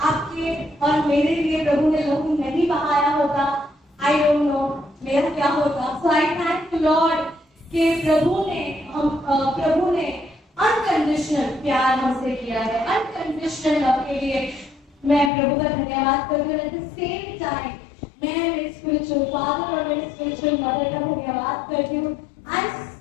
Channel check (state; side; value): drops out; right; at 15.3 s